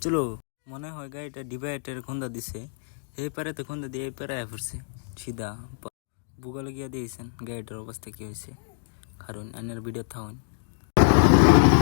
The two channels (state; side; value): silent; right; digital silence